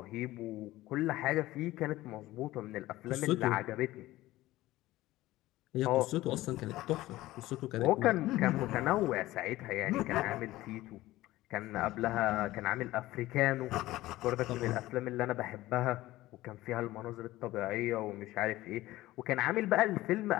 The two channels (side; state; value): right; quieter; 16.9 dB